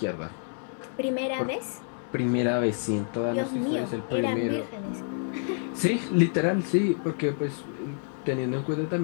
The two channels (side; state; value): right; silent; 59 dB below the other